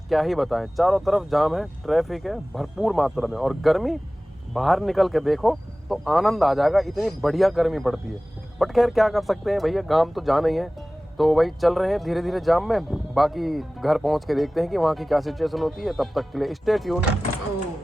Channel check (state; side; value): normal; both; correlation 0.98